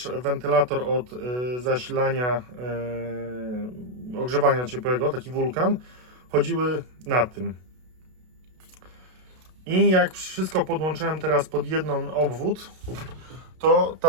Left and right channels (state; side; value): late; left; 32 ms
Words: wentylator od zasilania, ogrzewania ciepłego, taki wulkan, chodziły na tym. I jak wszystko podłączyłem teraz pod jeden obwód, to